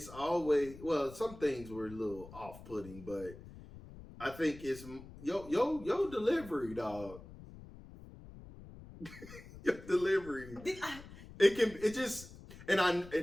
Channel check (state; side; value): noise; left; rumble, 16 dB below the sound